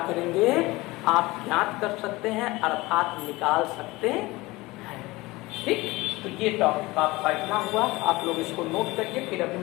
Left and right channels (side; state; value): right; quieter; 21.0 dB